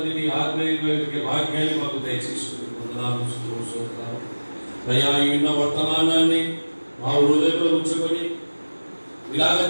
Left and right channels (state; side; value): inverted; both; correlation -1.00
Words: నీ ఆత్మీయ వాక్యాన్ని మాకు దయచేసుకుని వందనాలు, స్తోత్రాలు. అయ్యా ఈ ఉన్న వర్తమానాన్ని మా హృదయంలో ఉంచుకొని ఇలాగ